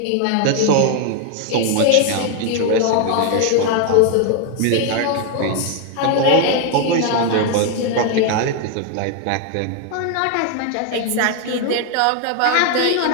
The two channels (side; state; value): both; different; correlation 0.00